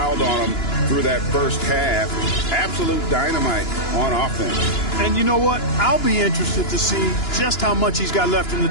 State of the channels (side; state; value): right; late; 2.9 ms